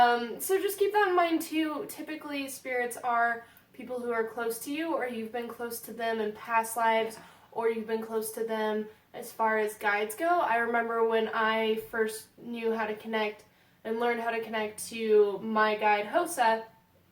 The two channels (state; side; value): identical; both; correlation 1.00